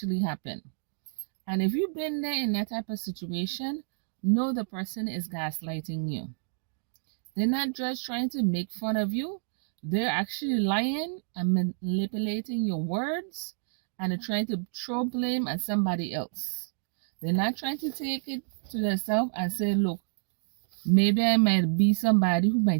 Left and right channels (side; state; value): left; silent; digital silence